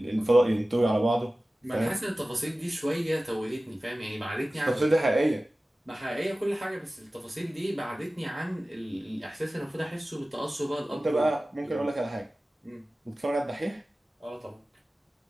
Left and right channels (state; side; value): normal; both; correlation 0.96